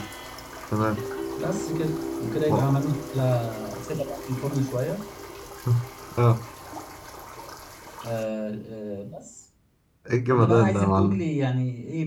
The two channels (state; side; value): identical; both; correlation 1.00